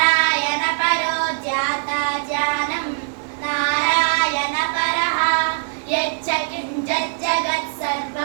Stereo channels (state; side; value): silent; left; digital silence